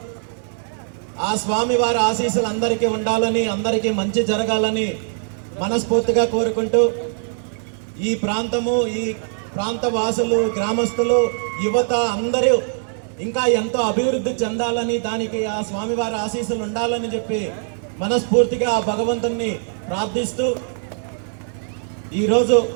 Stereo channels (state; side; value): silent; left; digital silence